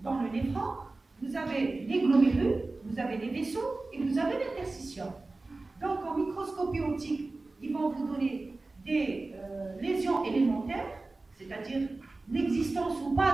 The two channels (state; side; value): quieter; left; 3.3 dB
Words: dans le néphron. Vous avez les glomérules, vous avez les vaisseaux et vous avez l'interstitium. Donc, en microscopie optique, ils vont vous donner des lésions élémentaires, c'est-à-dire l'existence ou